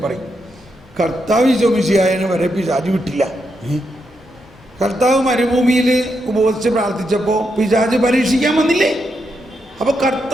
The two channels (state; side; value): normal; both; correlation 0.82